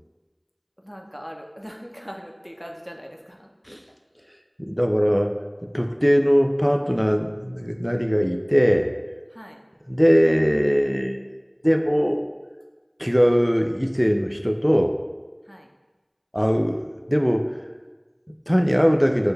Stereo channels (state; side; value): identical; both; correlation 1.00